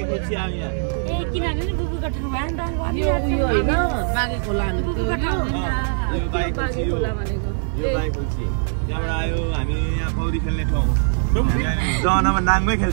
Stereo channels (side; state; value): left; silent; digital silence